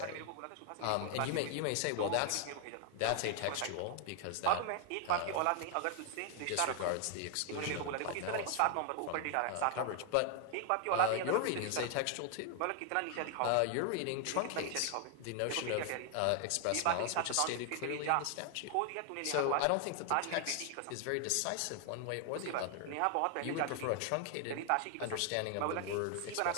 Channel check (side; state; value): both; different; correlation 0.00